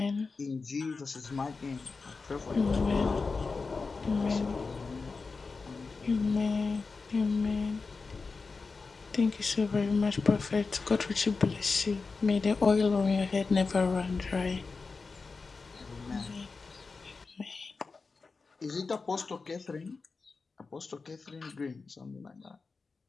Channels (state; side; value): quieter; right; 4.3 dB